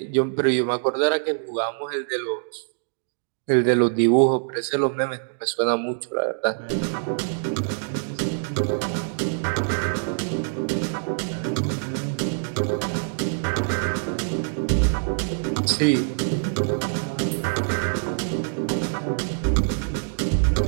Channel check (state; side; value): silent; left; digital silence